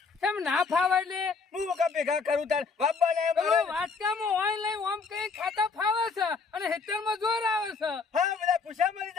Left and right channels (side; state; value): right; quieter; 4.7 dB